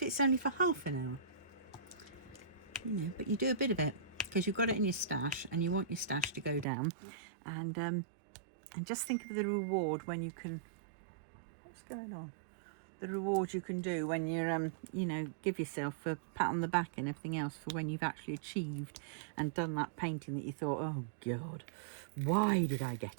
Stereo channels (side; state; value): left; drops out; at 6.7 s